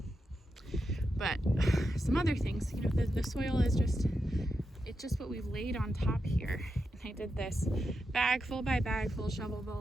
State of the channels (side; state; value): both; normal; correlation 0.87